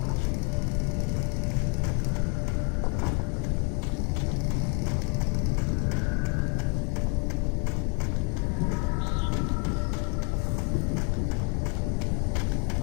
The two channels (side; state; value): right; quieter; 37.6 dB